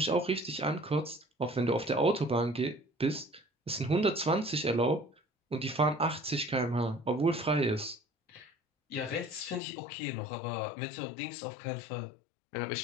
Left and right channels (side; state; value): right; drops out; at 9.6 s